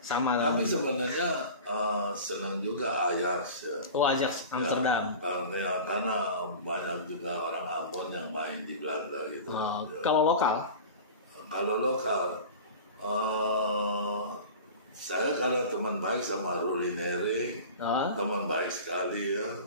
sama kan? Tapi sebenarnya senang juga Ajax ya. Ajax Amsterdam. Karena banyak juga orang Ambon yang main di Belanda gitu. Kalau lokal? Kalau lokal, saya karena teman baik sama Rulineri, teman baik sekali ya,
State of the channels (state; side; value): inverted; both; correlation -0.35